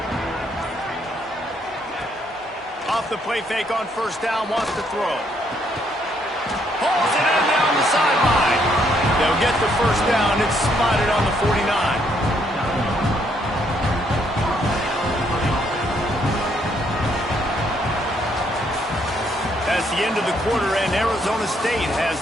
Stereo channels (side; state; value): both; normal; correlation 0.71